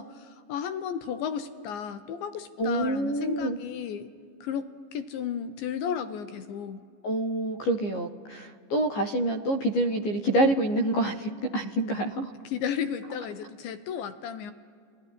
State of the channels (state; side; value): late; right; 15 ms